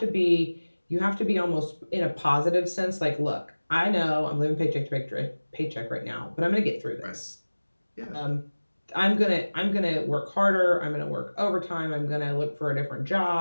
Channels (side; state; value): both; inverted; correlation -1.00